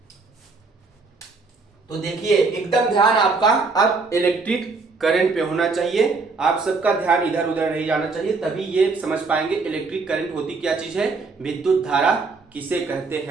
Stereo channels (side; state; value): left; quieter; 4.1 dB